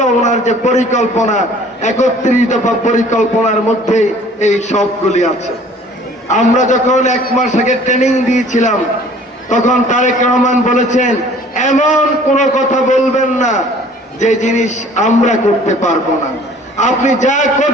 ওনার যে পরিকল্পনা, 31 দফা পরিকল্পনার মধ্যে এই সবগুলি আছে। আমরা যখন 1 মাস আগে ট্রেনিং দিয়েছিলাম তখন তারেক রহমান বলেছেন, এমন কোনো কথা বলবেন না যে জিনিস আমরা করতে পারবো না, আপনি যা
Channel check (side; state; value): both; normal; correlation 0.52